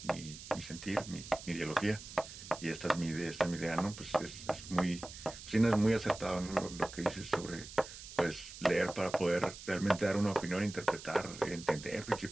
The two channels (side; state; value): right; noise; hiss, 13 dB below the sound